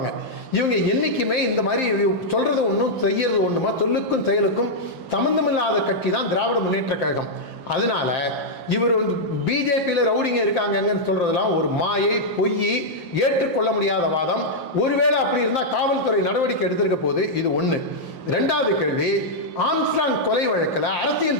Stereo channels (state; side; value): late; right; 5.8 ms